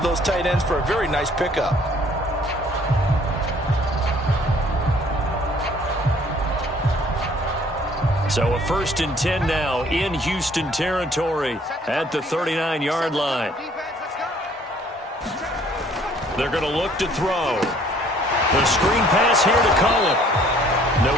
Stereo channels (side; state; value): both; normal; correlation 0.59